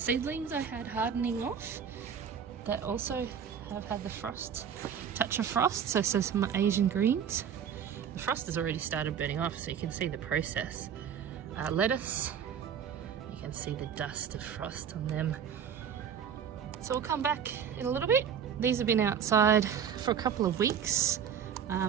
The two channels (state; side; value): quieter; left; 7.9 dB